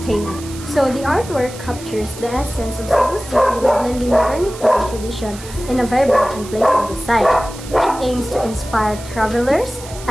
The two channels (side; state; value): right; noise; hiss, 16 dB below the sound